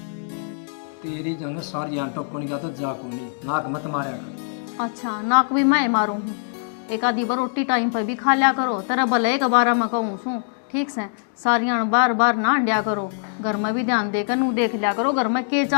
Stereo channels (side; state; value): right; silent; digital silence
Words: तेरी जो है सारी आंटो कौन गया तो जा को नहीं, नाक मत मारा कर। अच्छा नाक भी मैं मारू हूँ, एक आधी बार रोटी टाइम पर भी खा लिया करो। तेरा भले एक बार मैं कहूँ सू, ठीक से सारियां बार बार ना अंडिया करो। घर में भी ध्यान देकर नू देख लिया करो घर में के